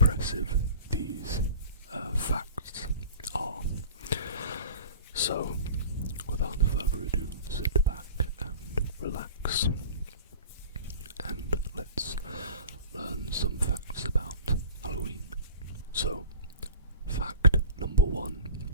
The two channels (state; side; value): inverted; both; correlation -0.40